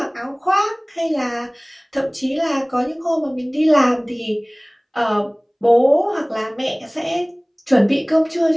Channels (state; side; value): identical; both; correlation 1.00